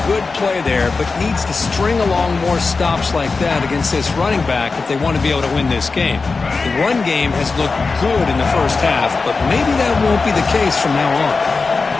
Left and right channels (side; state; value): right; quieter; 4.2 dB